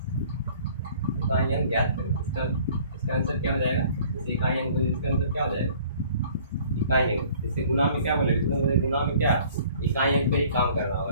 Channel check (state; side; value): inverted; both; correlation -0.53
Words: इकाई अंक ज्ञात करें। इसका आंसर क्या हो जाएगा, जैसे इकाई अंक, इसका आंसर क्या हो जाएगा इकाई अंक। जैसे गुना में क्या बोले, गुना में क्या इकाई अंक पे ही काम करना